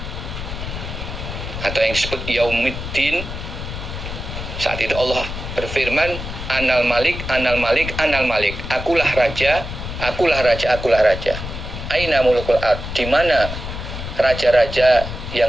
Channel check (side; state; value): left; noise; rumble, 8 dB below the sound